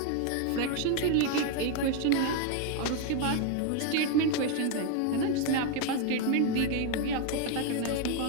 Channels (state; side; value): different; both; correlation 0.01